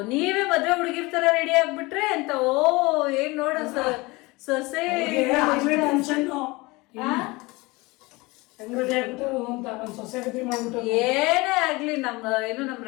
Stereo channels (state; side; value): quieter; right; 23.3 dB